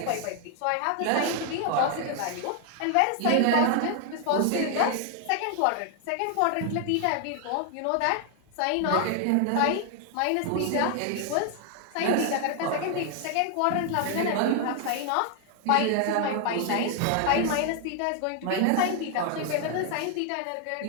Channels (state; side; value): different; both; correlation 0.00